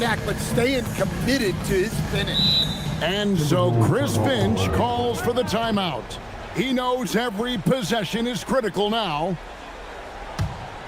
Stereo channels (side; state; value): both; identical; correlation 1.00